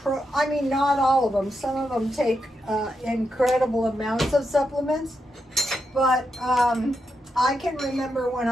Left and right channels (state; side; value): normal; both; correlation 0.84